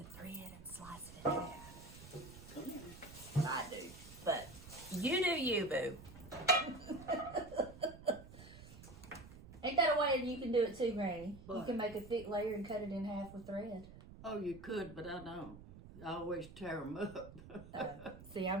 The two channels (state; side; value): noise; right; rumble, 16 dB below the sound